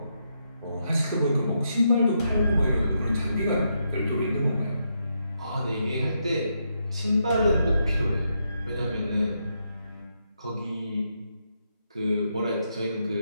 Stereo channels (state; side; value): inverted; both; correlation -0.81